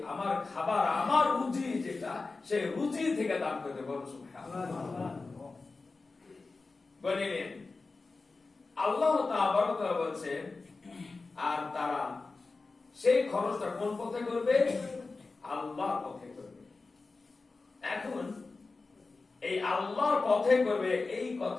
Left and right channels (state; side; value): quieter; right; 3.8 dB